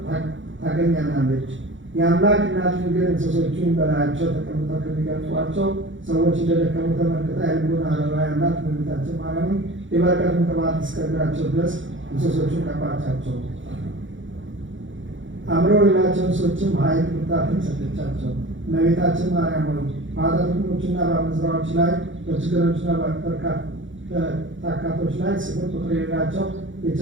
ታገኘናለች። የአምላክ እናት ግን እንስሶቹን በላያቸው ተቀምጠው ከሚገልጧቸው ሰዎች እንደደከሙ ተመልክታ የልቡን አበባ ያላት እመቤታችን ማርያምን የበረከቱን ቅባት እስከ እግራቸው ድረስ እንስሶቹን ቀባቻቸው። አምረው ሌላቸው እንስሶችም ኃይል ብርታትን ሰጠቻቸው። እመቤታችን ማርያም ሆይ በኃጢአተኞችና በአመንዝራዎች ላይ በችግረኞችና በታካቶች ላይ ስፍር ቁጥር የሌላቸው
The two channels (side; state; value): left; late; 0.56 ms